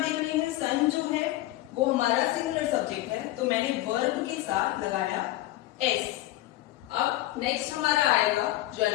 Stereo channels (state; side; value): quieter; right; 16.4 dB